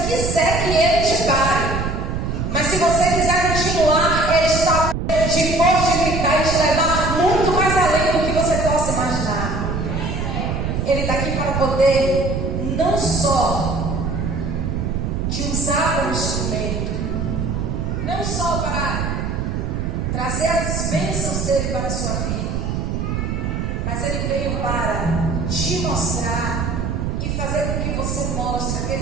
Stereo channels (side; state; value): right; noise; rumble, 1 dB below the sound